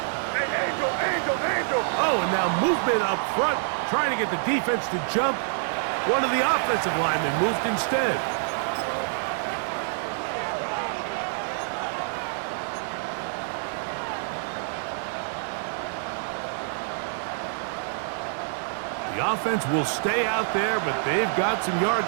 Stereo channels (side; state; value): left; silent; 60 dB below the other